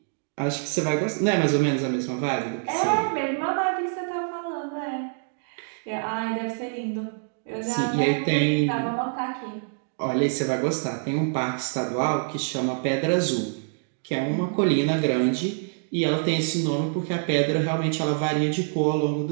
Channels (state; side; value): silent; left; 61 dB below the other